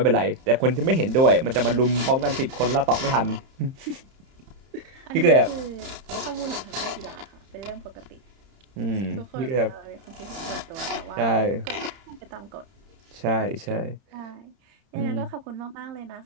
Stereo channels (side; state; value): left; late; 31 ms